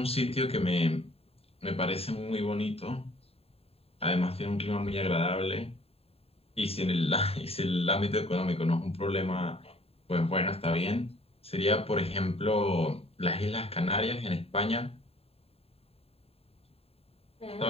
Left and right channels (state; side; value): late; right; 0.29 ms